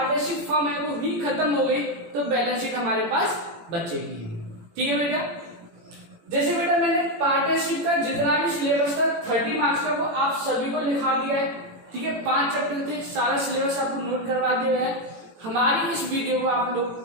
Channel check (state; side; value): late; left; 18 ms